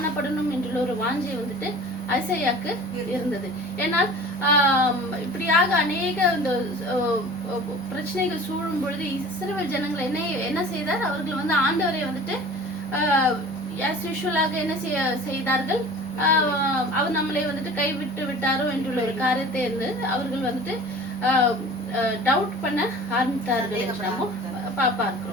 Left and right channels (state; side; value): normal; both; correlation 0.42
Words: என்றுள்ள ஒரு வாஞ்சை வந்துட்டு ஐசாயாக்கு இருந்தது. ஏன்னா இப்படியாக அநேக இந்த பிரச்சனைகள் சூழும் பொழுது இஸ்ரவேல் ஜனங்கள் என்ன செய்தார்? அவர்கள் வந்து ஆண்டவரை வந்துட்டு என்ன செய்தார்கள்? அவர் நம்மளை வந்துட்டு கைவிட்டு விட்டாரோ என்றுள்ள ஒரு காரியத்தை இருந்து அவர்கள் வந்துட்டு டவுட் பண்ண ஆரம்பித்தார்கள் என்று நம்ம